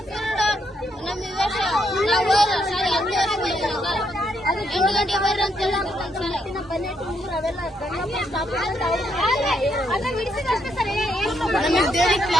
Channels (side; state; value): both; normal; correlation 0.76